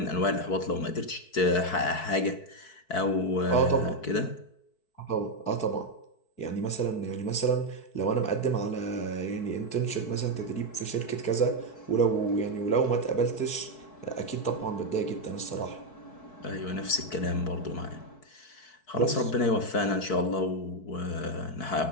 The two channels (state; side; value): late; right; 4.6 ms